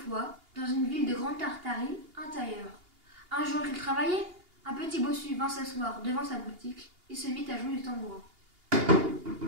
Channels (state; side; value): late; left; 2.8 ms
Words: dans une ville de Grande Tartarie, un tailleur. Un jour qu'il travaillait, un petit bossu vint s'asseoir devant sa boutique et se mit à jouer du tambourin.